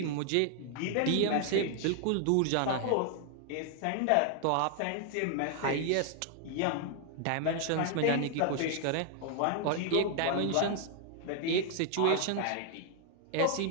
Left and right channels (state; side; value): different; both; correlation 0.00